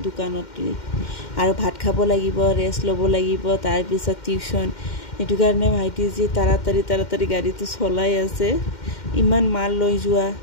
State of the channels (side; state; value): right; late; 2.1 ms